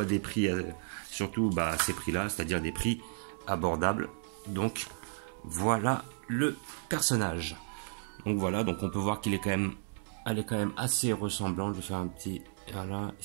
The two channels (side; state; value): left; silent; digital silence